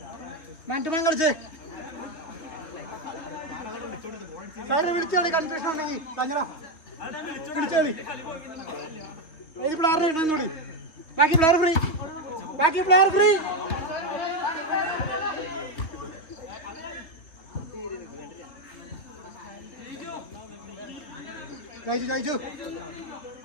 മാറ്റുമാൻ കളിച്ചേ സാറിനെ വിളിച്ചോളി. കൺഫ്യൂഷൻ ഉണ്ടെങ്കിൽ തങ്ങടാ വിളിച്ചോളി. ഏത് പ്ലെയറിനെ ഇടുന്നോടി? ബാക്കി പ്ലെയർ ഫ്രീ. കഴിച്ചു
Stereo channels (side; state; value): right; late; 3.2 ms